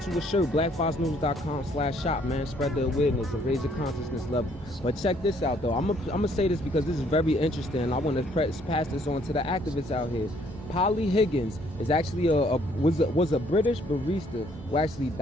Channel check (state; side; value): normal; both; correlation 0.65